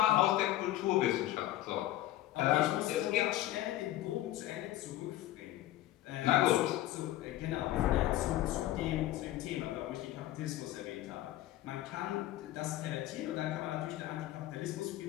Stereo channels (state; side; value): quieter; right; 14.7 dB